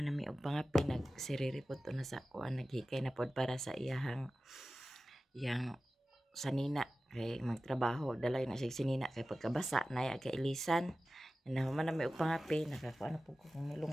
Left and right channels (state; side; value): normal; both; correlation 0.95